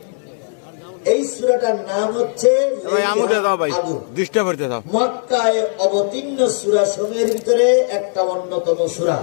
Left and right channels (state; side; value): silent; right; digital silence